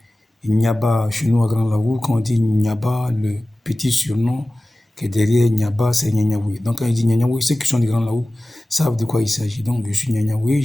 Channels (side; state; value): both; normal; correlation 0.97